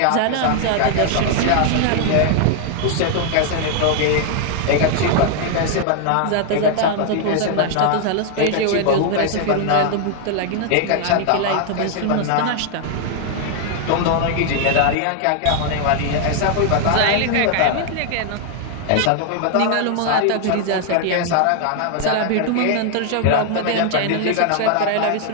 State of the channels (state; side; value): different; both; correlation 0.00